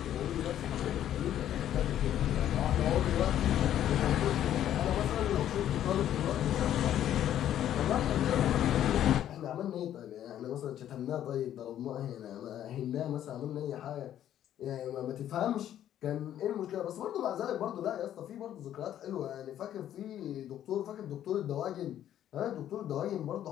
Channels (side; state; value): right; quieter; 11.3 dB